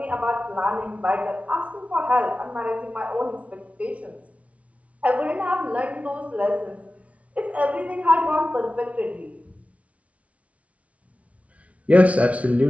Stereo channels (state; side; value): late; left; 0.065 ms